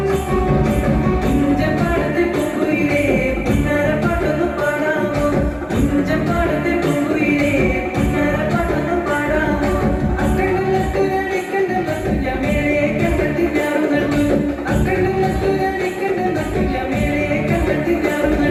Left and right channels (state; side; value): identical; both; correlation 1.00